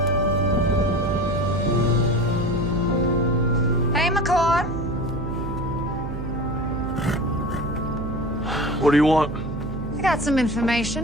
Hey, McCord. What do you want? I got some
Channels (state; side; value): noise; right; hum, 6 dB below the sound